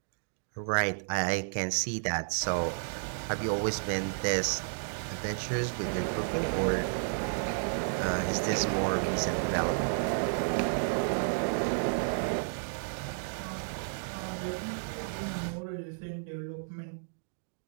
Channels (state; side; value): silent; left; digital silence